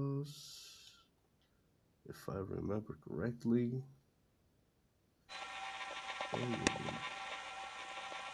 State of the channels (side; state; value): both; identical; correlation 1.00